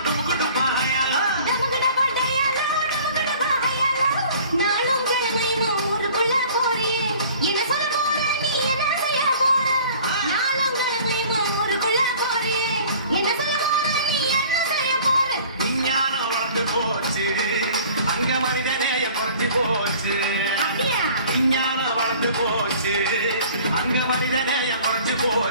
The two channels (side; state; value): both; inverted; correlation -0.48